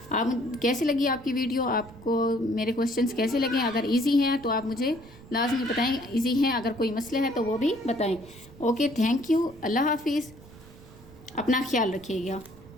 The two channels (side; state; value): right; noise; rumble, 21 dB below the sound